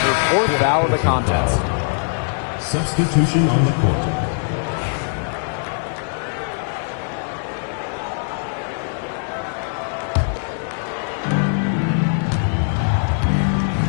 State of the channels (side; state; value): right; silent; digital silence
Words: her fourth foul of the contest. Substitution on the court.